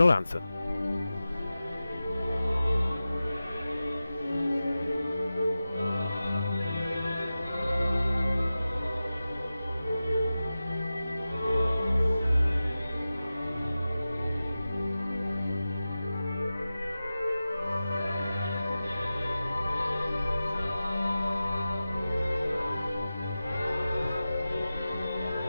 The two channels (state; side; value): inverted; both; correlation -0.95